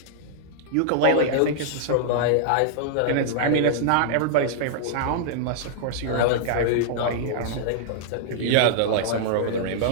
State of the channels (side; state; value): both; different; correlation -0.01